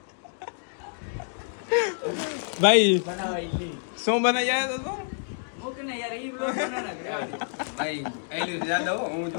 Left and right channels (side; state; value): right; silent; digital silence